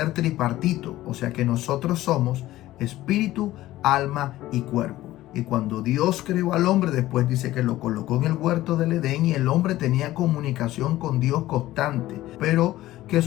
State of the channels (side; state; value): right; quieter; 15.7 dB